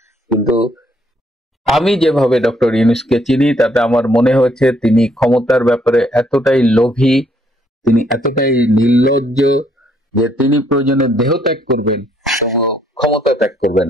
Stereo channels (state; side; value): normal; both; correlation 0.69